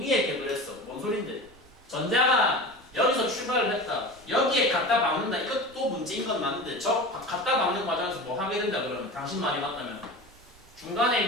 격을 했어. 뭔 소린데? 전자가 여기서 출발을 했다. 여기에 갖다 박는다. 이것도 문제인 건 맞는데 저 갖다 박는 과정에서 뭐 하게 된다 그러면 당신 말이 맞다면 중간에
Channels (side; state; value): right; noise; rumble, 26 dB below the sound